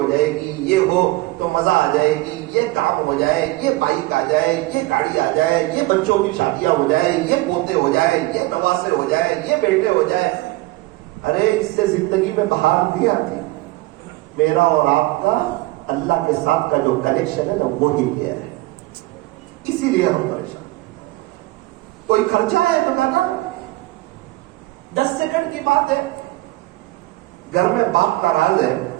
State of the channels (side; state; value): left; quieter; 19.9 dB